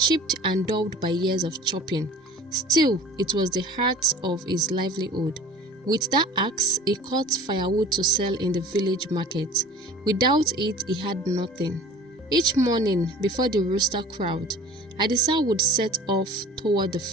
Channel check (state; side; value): normal; both; correlation 0.43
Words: and dulled by years of chopping. Still, it was the heart of his livelihood. With that axe, he cut firewood to sell in the village market. Without it, he had nothing. Each morning, before the rooster crowed, Adisa would set off toward the